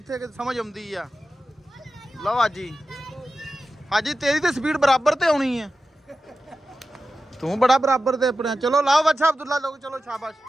ਕਿਤੇ ਸਮਝ ਆਉਂਦੀ ਆ ਲਓ ਹਾਜੀ ਹਾਜੀ ਤੇਰੀ ਤੇ ਸਪੀਡ ਬਰਾਬਰ ਤੇ ਆਉਣੀ ਹੈ ਤੂੰ ਬੜਾ ਬਰਾਬਰ ਤੇ ਆਪਣੇ ਚਲੋ ਲਾਓ ਬੱਚਾ अब्दुल्ला लोग चलो शाबाश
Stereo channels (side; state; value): both; normal; correlation 0.93